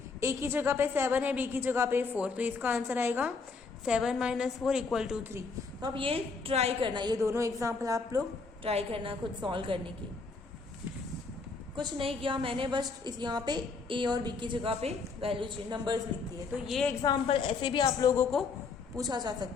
ए की जगह पे 7 है, बी की जगह पे 4, तो इसका आंसर आएगा 7 माइनस 4 इक्वल टू 3। तो अब ये ट्राई करना, ये दोनों एग्जाम्पल आप लोग ट्राई करना खुद सॉल्व करने की। कुछ नहीं किया मैंने, बस इस यहाँ पे ए और बी की जगह पे वैल्यू नंबर्स लिख दिए। तो ये एग्जाम्पल ऐसे भी आप लोगों को पूछा जा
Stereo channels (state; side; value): quieter; right; 4.6 dB